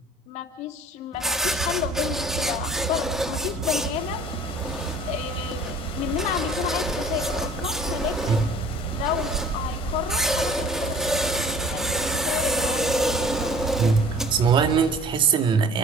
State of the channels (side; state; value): both; normal; correlation 0.50